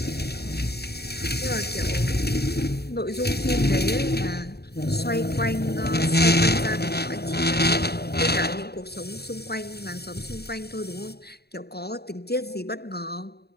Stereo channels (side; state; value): right; late; 0.47 ms